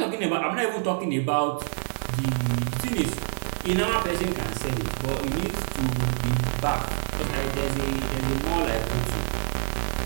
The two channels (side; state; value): left; silent; digital silence